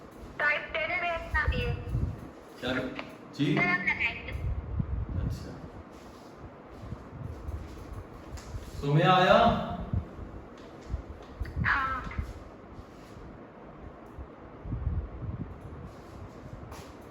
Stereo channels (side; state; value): both; identical; correlation 1.00